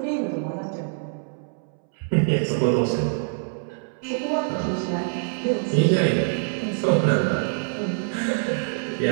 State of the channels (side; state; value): left; silent; 62 dB below the other